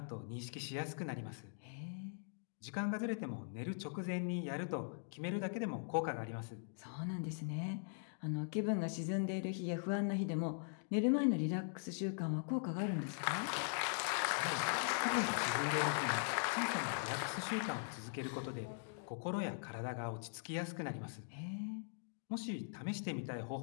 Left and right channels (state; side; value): silent; right; digital silence